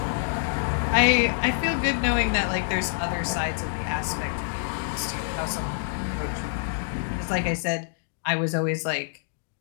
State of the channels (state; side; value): silent; right; digital silence